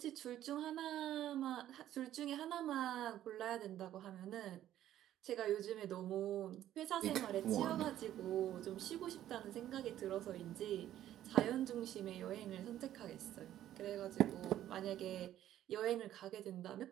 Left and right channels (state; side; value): quieter; left; 12.3 dB